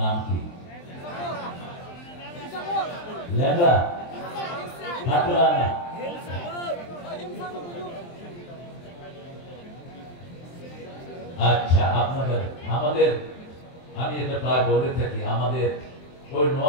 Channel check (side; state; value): right; late; 23 ms